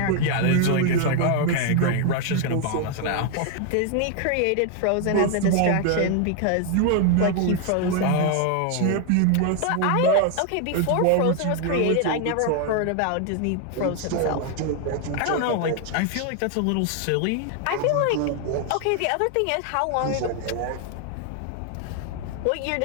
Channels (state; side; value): different; both; correlation 0.00